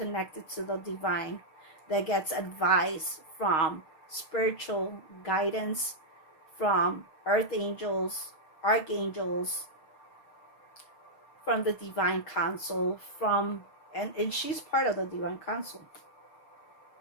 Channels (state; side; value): late; right; 6.3 ms